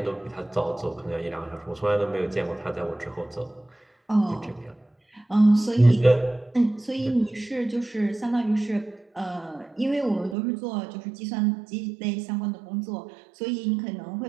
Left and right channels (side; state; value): left; drops out; at 10.4 s